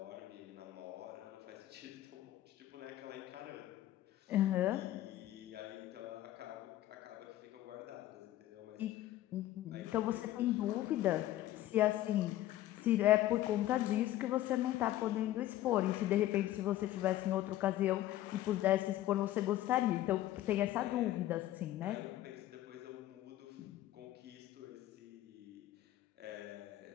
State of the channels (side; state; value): right; quieter; 14.3 dB